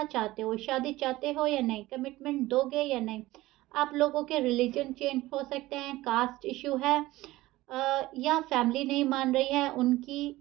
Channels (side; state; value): left; quieter; 17.8 dB